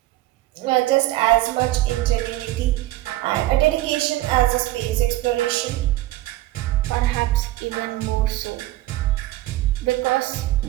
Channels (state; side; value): quieter; left; 16.4 dB